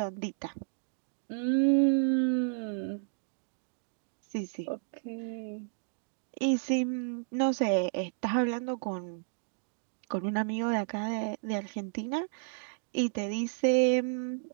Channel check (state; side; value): silent; left; digital silence